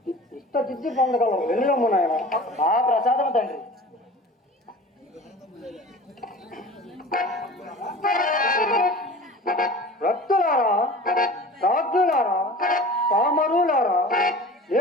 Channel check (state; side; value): normal; both; correlation 0.39